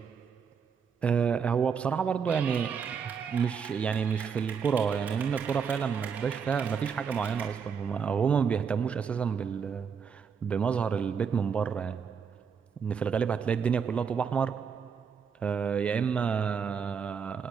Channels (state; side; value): quieter; left; 6.5 dB